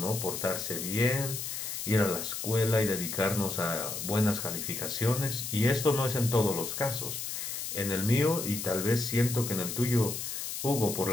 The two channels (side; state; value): left; noise; hiss, 5 dB below the sound